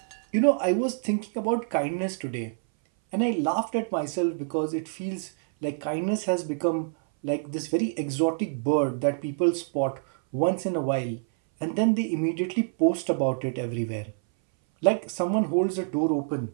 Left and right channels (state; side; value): silent; left; 59 dB below the other